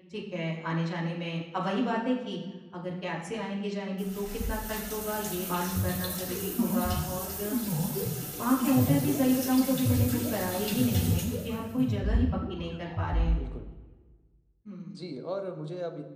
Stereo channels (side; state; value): both; identical; correlation 1.00